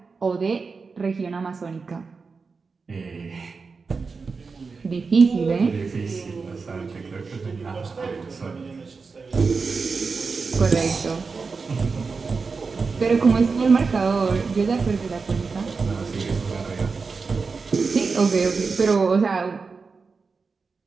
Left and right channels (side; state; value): left; quieter; 4.7 dB